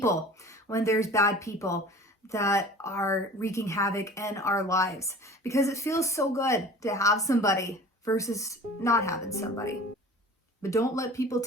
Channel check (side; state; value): both; normal; correlation 0.42